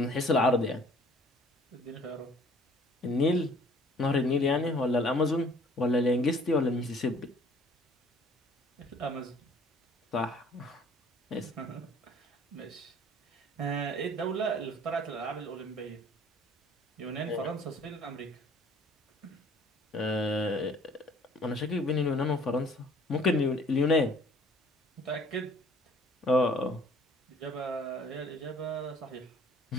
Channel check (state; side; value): normal; both; correlation 0.55